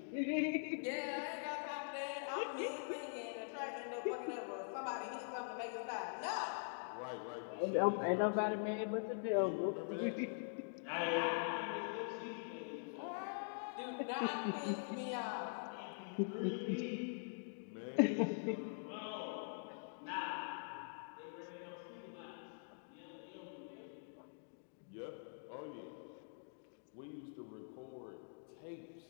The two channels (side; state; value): right; silent; digital silence